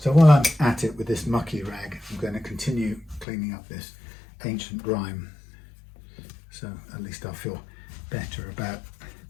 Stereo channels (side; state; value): right; drops out; at 3.2 s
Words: while I'm at it with this mucky rag, I'm going to continue cleaning up this ancient grime, so at least I'll feel better about